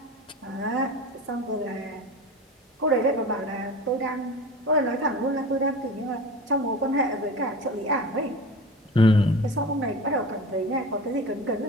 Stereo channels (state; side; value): normal; both; correlation 0.33